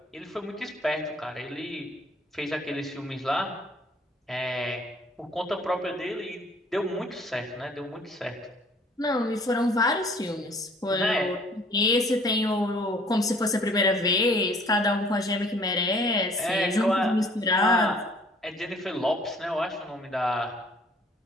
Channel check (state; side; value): normal; both; correlation 0.56